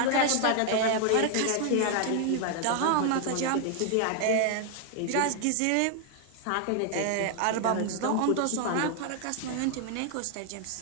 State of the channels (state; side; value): different; both; correlation 0.00